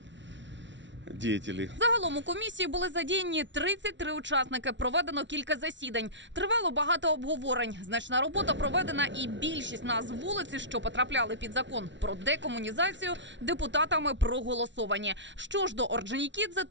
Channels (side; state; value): left; late; 0.53 ms